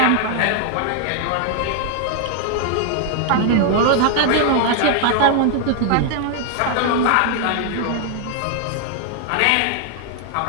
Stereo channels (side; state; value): both; different; correlation 0.00